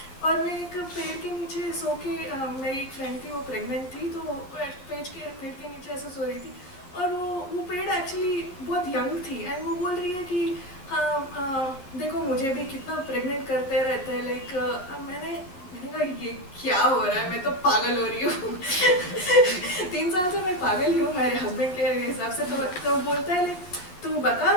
और मैं एक पेड़ के नीचे सो के, मेरी एक फ्रेंड थी वो प्रेग्नेंट थी, तो पेड़ के नीचे ऐसे सो रही थी और वो पेड़ एक्चुअली बहुत यंग थी एंड वो बोल रही है कि हाँ देखो मुझे भी कितना प्रेग्नेंट करते रहते हैं। लाइक मैंने कहा ये क्या हो रहा है, मैं तो पागल हो रही हूँ 3 साल से मैं पागल ही हूँ मेरे हस्बैंड के हिसाब से। तो वो बोलता है लाइक तू बता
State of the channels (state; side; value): late; right; 11 ms